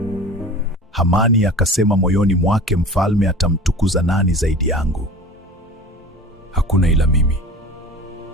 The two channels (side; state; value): both; normal; correlation 0.37